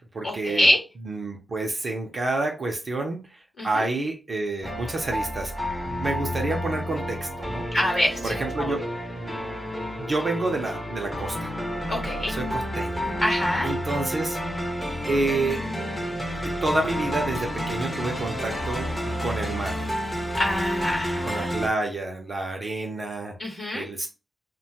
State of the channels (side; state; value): both; normal; correlation 0.88